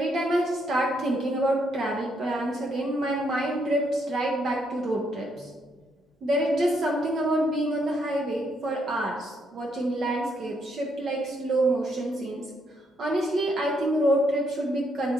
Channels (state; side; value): normal; both; correlation 0.75